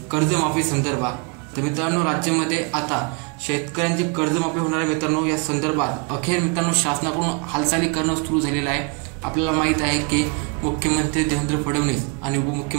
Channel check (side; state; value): left; quieter; 29.9 dB